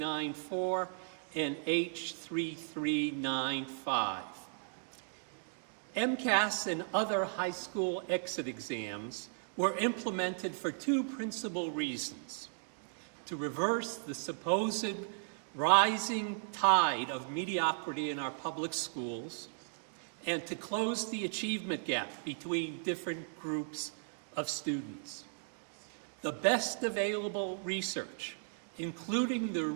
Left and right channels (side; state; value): left; silent; digital silence